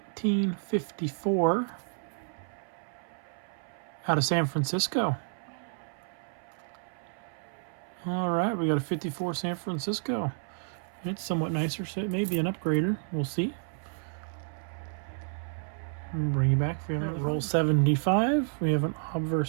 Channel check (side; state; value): left; silent; 57 dB below the other